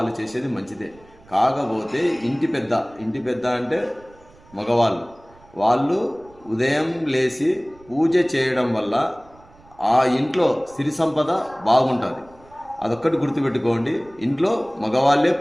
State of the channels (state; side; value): noise; right; rumble, 26 dB below the sound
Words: చేసేది మంచిదే. కాకపోతే ఇంటి పెద్ద అంటే వాళ్ళు ఉదయం లేచి పూజ చేయడం వల్ల ఆ ఇంట్లో సిరి సంపద బాగుంటుంది. అదొక్కటి గుర్తుపెట్టుకోండి. ఇంట్లో మగవాళ్ళే